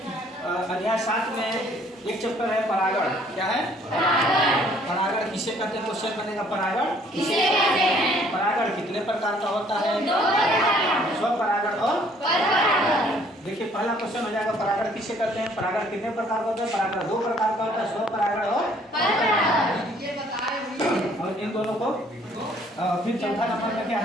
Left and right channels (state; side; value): normal; both; correlation 0.60